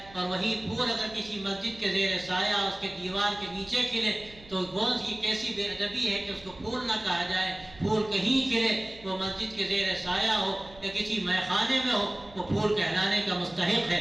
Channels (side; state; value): right; noise; hum, 22 dB below the sound